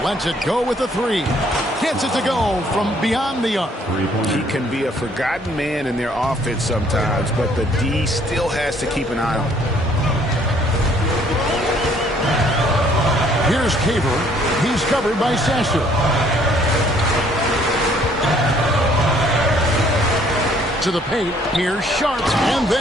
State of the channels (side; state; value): both; normal; correlation 0.62